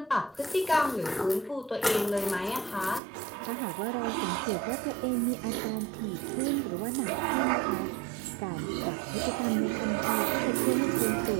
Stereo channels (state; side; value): drops out; left; at 3.0 s